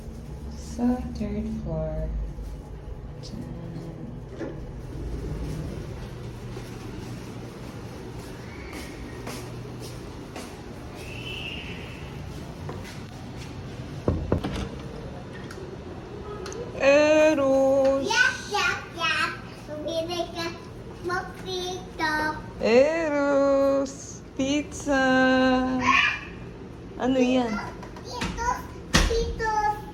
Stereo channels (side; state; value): both; identical; correlation 1.00